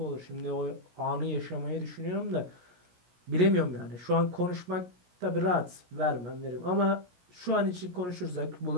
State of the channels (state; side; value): late; left; 17 ms